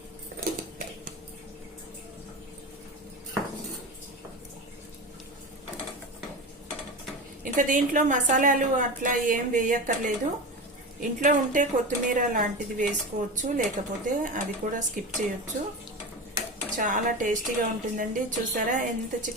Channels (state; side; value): normal; both; correlation 0.25